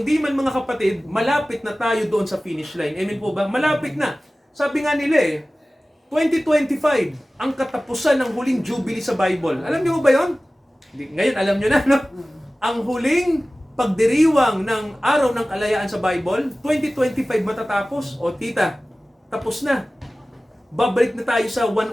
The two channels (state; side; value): normal; both; correlation 0.97